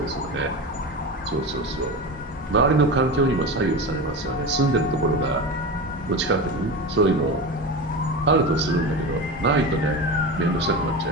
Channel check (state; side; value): normal; both; correlation 0.25